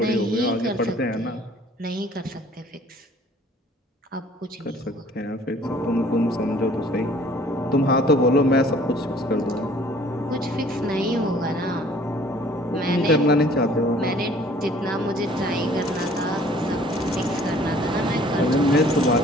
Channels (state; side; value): normal; both; correlation 0.54